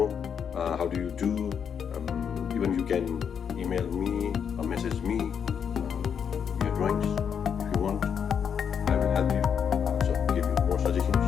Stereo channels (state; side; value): quieter; right; 7.5 dB